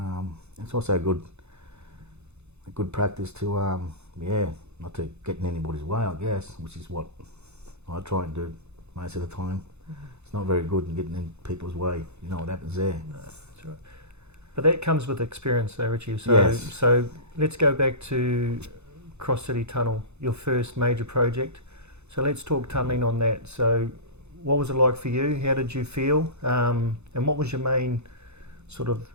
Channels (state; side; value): late; left; 0.81 ms